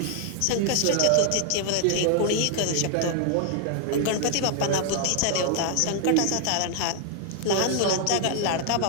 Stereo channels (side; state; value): both; different; correlation 0.00